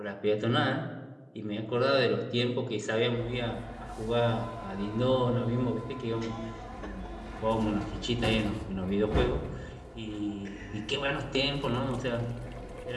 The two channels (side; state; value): both; identical; correlation 1.00